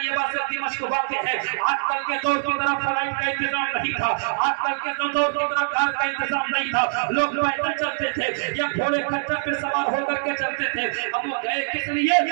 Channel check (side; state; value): left; silent; 63 dB below the other